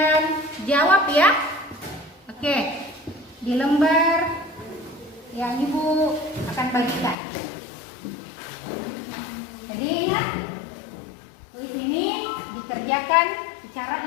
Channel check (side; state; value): right; drops out; at 7.2 s